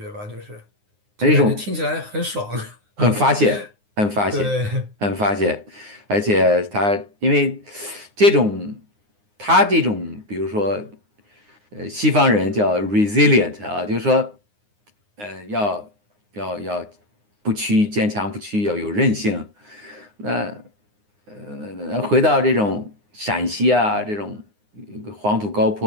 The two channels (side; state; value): left; late; 9.7 ms